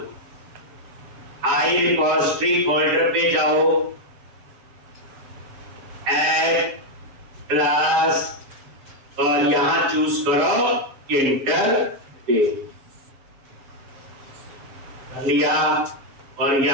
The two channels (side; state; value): left; late; 7.3 ms